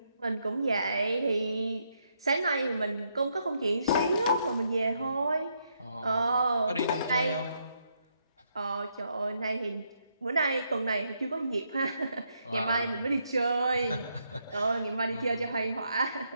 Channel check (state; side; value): inverted; both; correlation -0.77